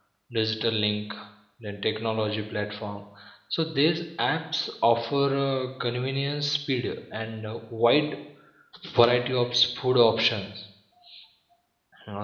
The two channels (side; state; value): both; identical; correlation 1.00